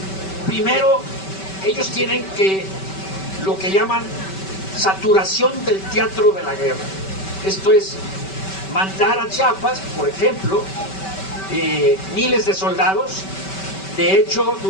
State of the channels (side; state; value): right; late; 5.2 ms